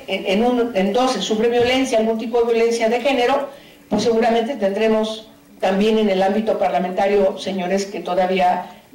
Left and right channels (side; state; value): both; identical; correlation 1.00